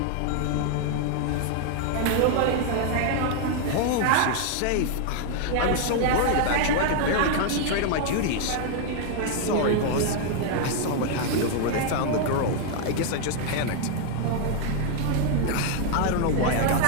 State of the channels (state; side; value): different; both; correlation 0.00